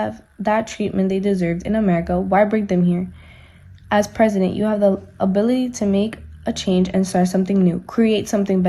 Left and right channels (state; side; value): identical; both; correlation 1.00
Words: that treatment they deserved in America, why bring them here? As president, you have the ability to make a change and start something new, create something